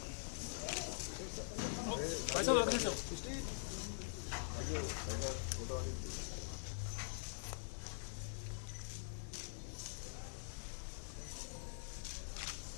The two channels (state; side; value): silent; right; digital silence